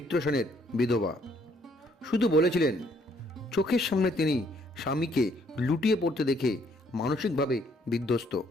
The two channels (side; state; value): both; normal; correlation 0.66